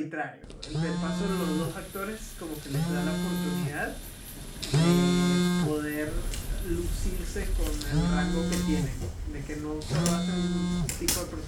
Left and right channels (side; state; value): both; identical; correlation 1.00